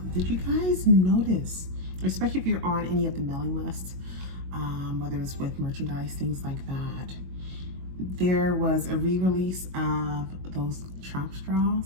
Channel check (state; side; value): late; left; 22 ms